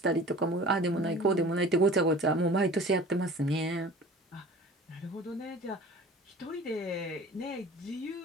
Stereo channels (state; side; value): normal; both; correlation 0.43